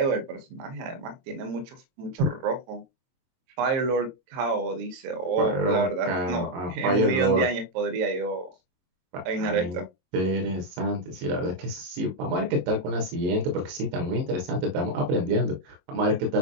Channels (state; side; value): late; left; 22 ms